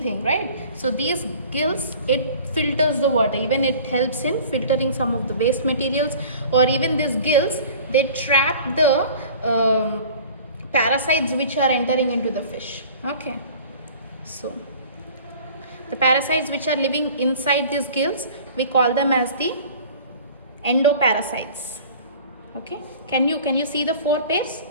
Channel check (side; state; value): both; inverted; correlation -0.45